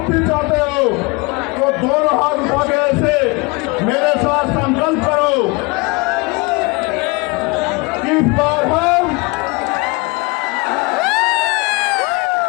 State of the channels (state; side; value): quieter; right; 27.0 dB